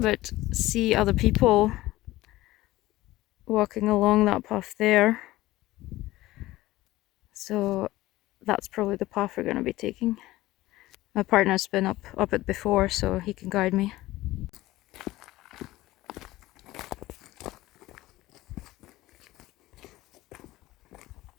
see other people walking along that path there. So that's probably the path we're going to be taking. My partner's been up it before, so he can guide me.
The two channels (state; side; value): quieter; right; 17.3 dB